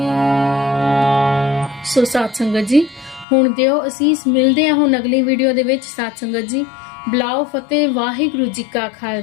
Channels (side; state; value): right; drops out; at 3.2 s